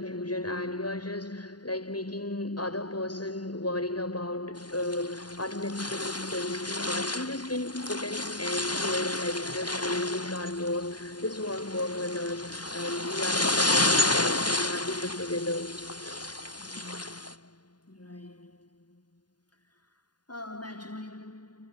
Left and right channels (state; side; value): late; right; 0.70 ms